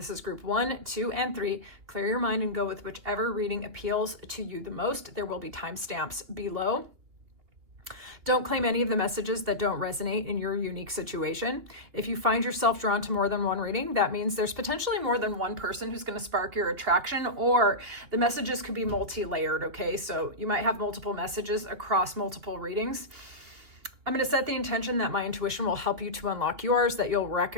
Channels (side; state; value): left; late; 2.9 ms